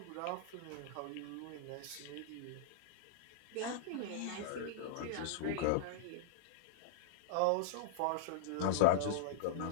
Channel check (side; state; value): both; different; correlation -0.02